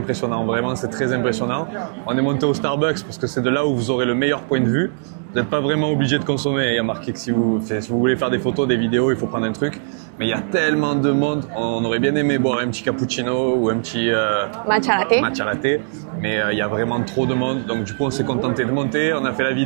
vraiment c'est très impressionnant. On est monté au Starbucks parce que c'est de là où vous aurez le meilleur point de vue. Vous n'êtes pas vraiment obligé de consommer. Il y a marqué que si vous voulez faire des photos, des vidéos, il faut prendre un truc. Mais il y a tellement de monde. On aurait bien aimé boire un petit cappuccino ou un petit matcha latte. Mais il y a vraiment trop de monde. Donc du coup on s'est contenté de monter. On a fait la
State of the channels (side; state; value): left; silent; digital silence